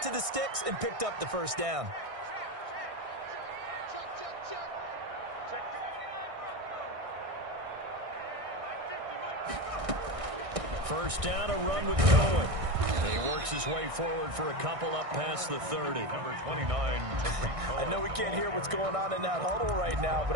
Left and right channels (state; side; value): late; left; 1.6 ms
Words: to the sticks, and picked up the first down. First down, a run with Cohen. He works his way forward for a couple up past the 30. Number 29, I know we can't hear what's going on in that huddle right now,